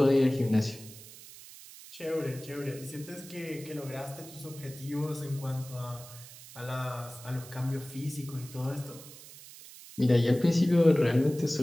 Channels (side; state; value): right; noise; hiss, 17 dB below the sound